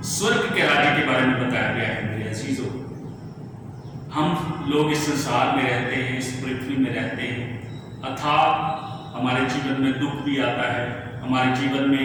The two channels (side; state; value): both; identical; correlation 1.00